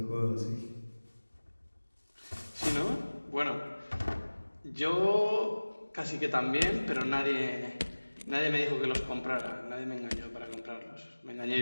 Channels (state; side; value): inverted; both; correlation -1.00